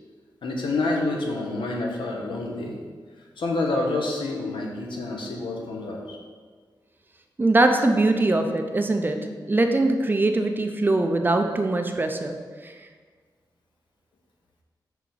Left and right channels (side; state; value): both; normal; correlation 0.83